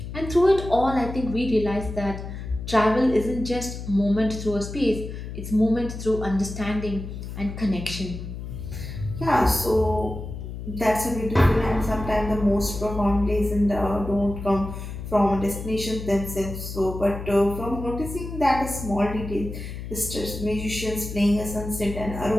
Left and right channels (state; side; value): noise; left; hum, 8 dB below the sound